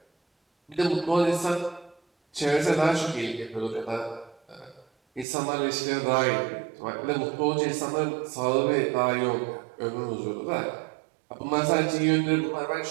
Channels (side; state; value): left; drops out; at 5.2 s